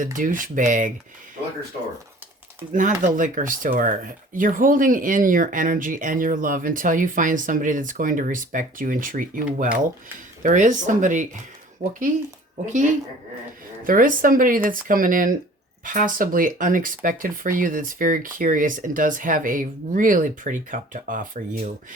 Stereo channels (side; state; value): both; normal; correlation 0.49